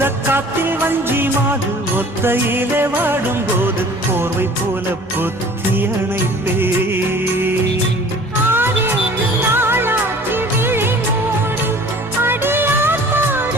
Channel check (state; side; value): normal; both; correlation 0.47